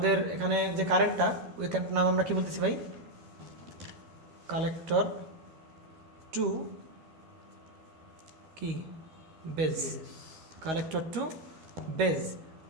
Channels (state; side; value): late; left; 13 ms